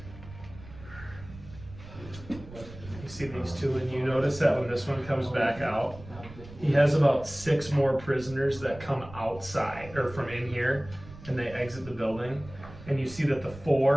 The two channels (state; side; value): noise; right; rumble, 16 dB below the sound